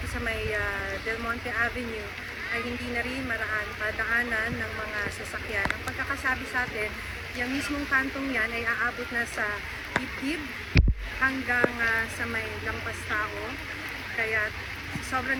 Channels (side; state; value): both; identical; correlation 1.00